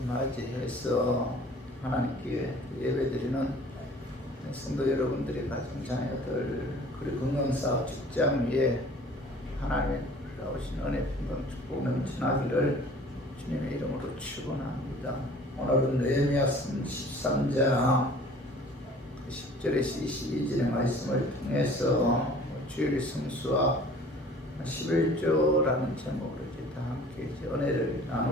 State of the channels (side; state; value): both; normal; correlation 0.49